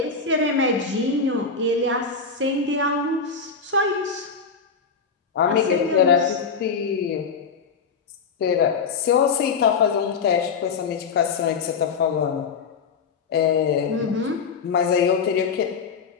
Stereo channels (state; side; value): quieter; right; 5.4 dB